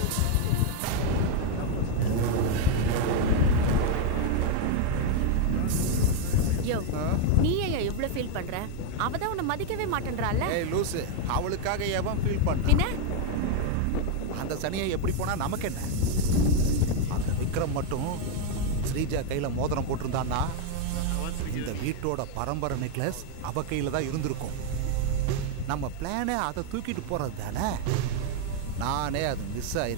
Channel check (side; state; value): both; different; correlation 0.01